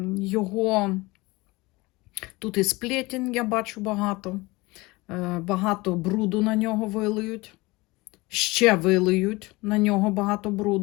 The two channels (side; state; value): right; quieter; 22.6 dB